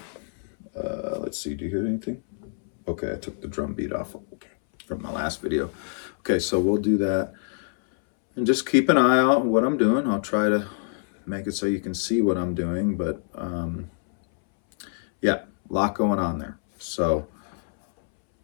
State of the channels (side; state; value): right; silent; 61 dB below the other